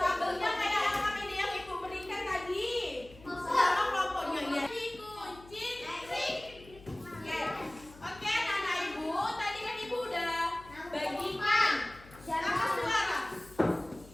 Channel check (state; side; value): noise; left; hum, 21 dB below the sound